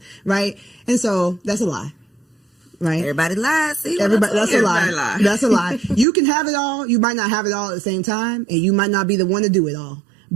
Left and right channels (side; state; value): left; drops out; at 6.1 s